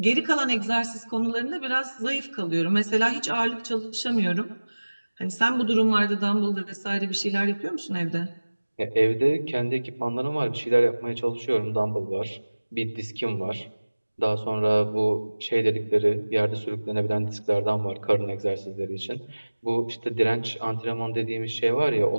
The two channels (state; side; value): inverted; both; correlation -1.00